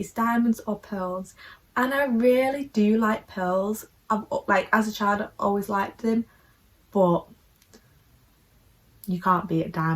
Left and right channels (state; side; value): identical; both; correlation 1.00